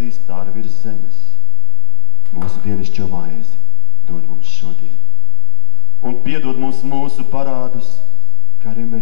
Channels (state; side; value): quieter; right; 30.2 dB